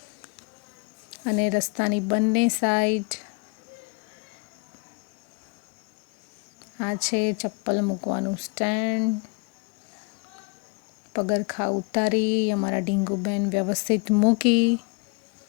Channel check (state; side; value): quieter; right; 31.5 dB